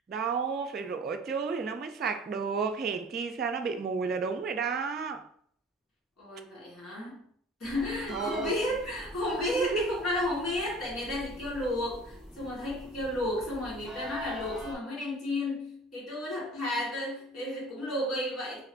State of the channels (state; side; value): normal; both; correlation 0.45